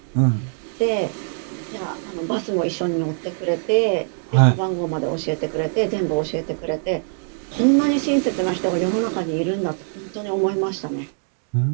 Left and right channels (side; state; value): left; silent; 64 dB below the other